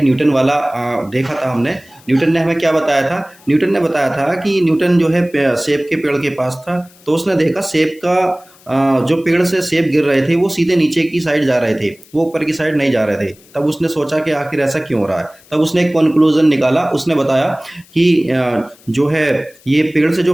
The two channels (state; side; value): noise; left; hiss, 27 dB below the sound